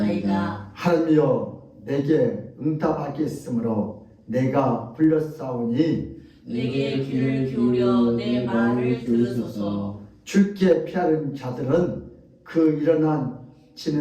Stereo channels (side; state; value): both; identical; correlation 1.00